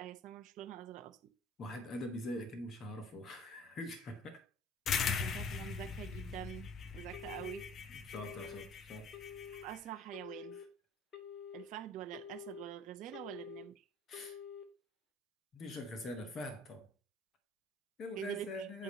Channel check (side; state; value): both; normal; correlation 0.50